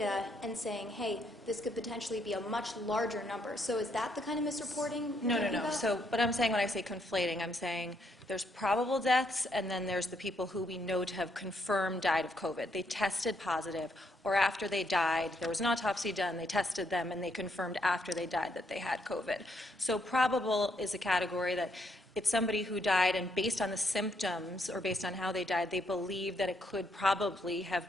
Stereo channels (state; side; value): normal; both; correlation 0.74